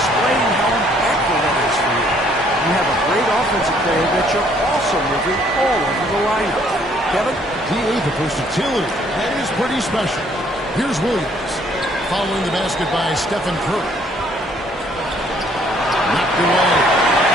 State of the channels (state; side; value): normal; both; correlation 0.63